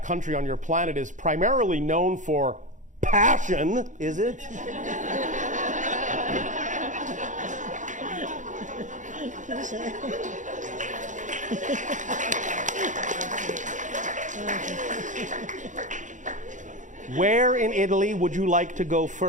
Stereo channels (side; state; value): left; late; 0.36 ms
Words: country on your planet is primarily known for passion, is it? Where in Italy would you like to go